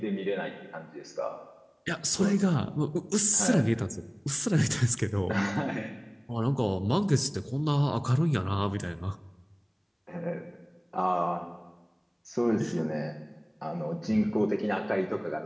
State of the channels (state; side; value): identical; both; correlation 1.00